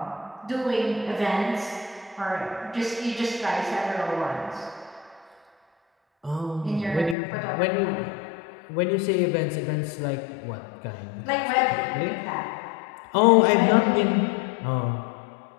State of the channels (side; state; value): right; drops out; at 7.2 s